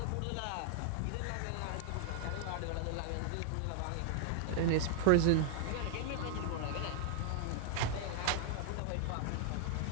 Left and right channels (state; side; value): different; both; correlation 0.00